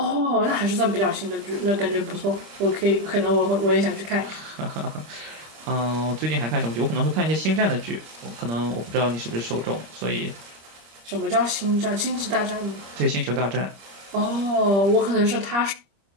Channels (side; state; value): left; late; 25 ms